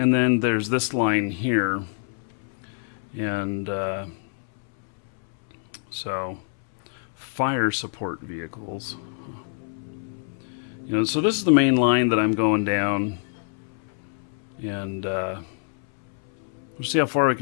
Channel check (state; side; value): silent; right; 61 dB below the other